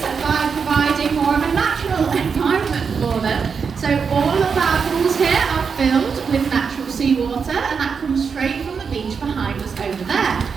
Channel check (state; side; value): quieter; left; 5.9 dB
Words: by providing more of a natural environment for them. So all of our pools here are filled with natural seawater, and that comes straight from the beach behind us over there.